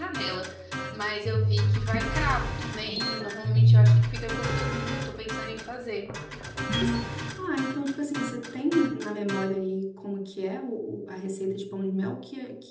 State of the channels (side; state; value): both; identical; correlation 1.00